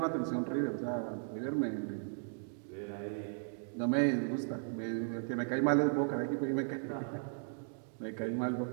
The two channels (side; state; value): left; silent; digital silence